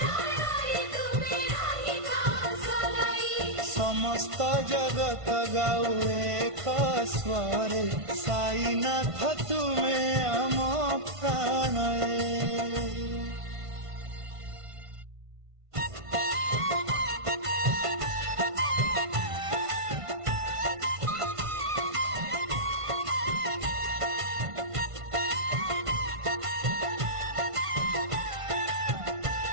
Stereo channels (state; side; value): late; left; 1.5 ms